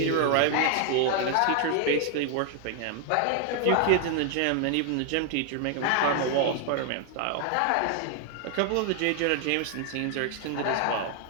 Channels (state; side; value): different; both; correlation 0.00